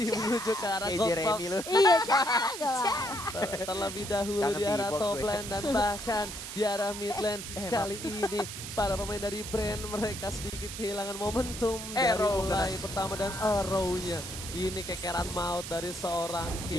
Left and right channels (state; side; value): noise; right; hiss, 8 dB below the sound